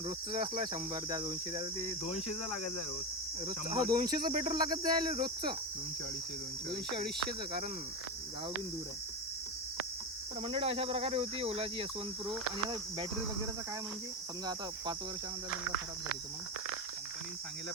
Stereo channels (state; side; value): normal; both; correlation 0.16